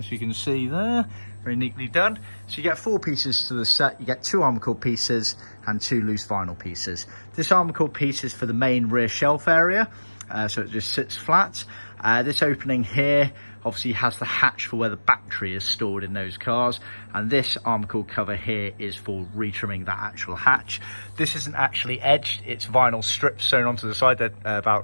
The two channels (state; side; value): inverted; both; correlation -1.00